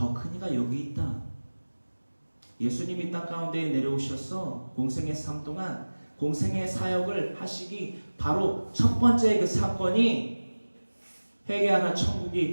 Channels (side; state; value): both; inverted; correlation -1.00